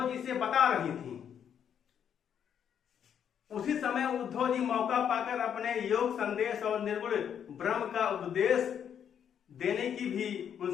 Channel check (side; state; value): right; quieter; 8.6 dB